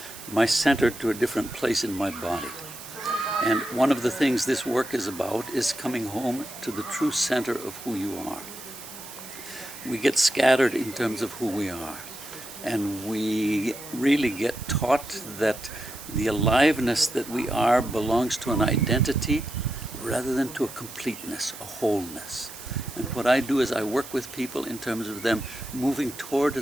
my center to a different place in my body. And one of the things this work is about is coming home to the true center of who you are. We get scattered in terms of who we are, and we really get taught that the aliveness that we are belongs to an identity rather than to a completeness, a wholeness. And what I do is I work with people in terms of them moving toward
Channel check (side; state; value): right; noise; hiss, 14 dB below the sound